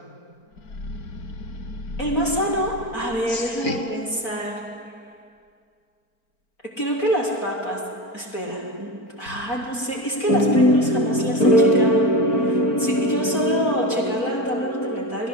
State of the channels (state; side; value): late; right; 4.4 ms